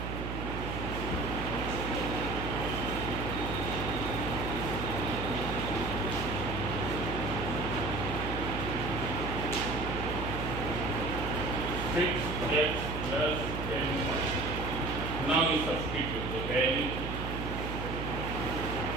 6x plus 10y. Now you substitute the value.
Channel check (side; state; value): right; noise; hum, 4 dB below the sound